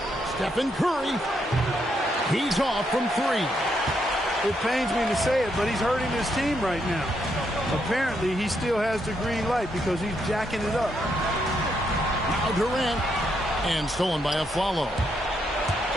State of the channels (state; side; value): normal; both; correlation 0.78